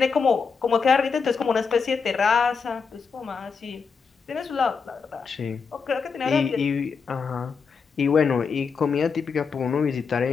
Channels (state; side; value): quieter; right; 5.4 dB